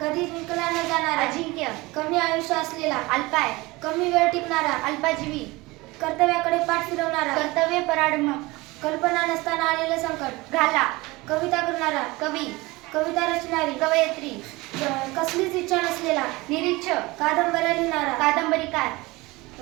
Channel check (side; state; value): left; quieter; 22.1 dB